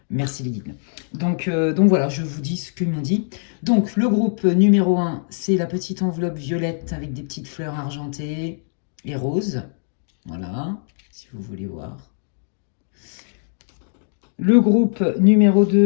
Merci les guides. Donc voilà, je vous dis ce qu'ils m'ont dit. Donc le groupe numéro 1, c'est la petite enveloppe violette avec des petites fleurs argentées et roses. Voilà, si vous voulez voir. Le groupe numéro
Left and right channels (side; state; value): right; silent; digital silence